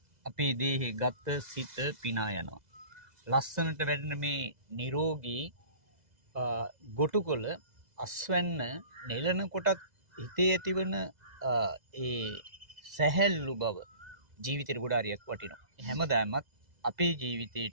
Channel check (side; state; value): left; late; 2.0 ms